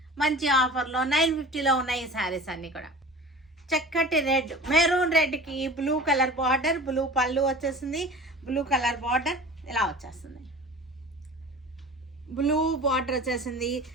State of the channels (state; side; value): normal; both; correlation 0.39